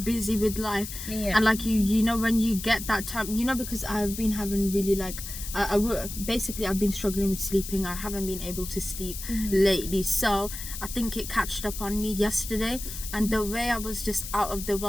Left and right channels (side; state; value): left; noise; hiss, 9 dB below the sound